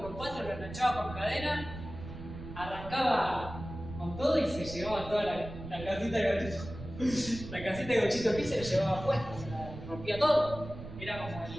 lo enganchaba con cadena, arrancaba con todo y se llevaba toda la casita de Gauchito. La casita de Gauchito Gil se la llevaba puesta, se la rompía todo. Era como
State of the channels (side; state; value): right; noise; rumble, 11 dB below the sound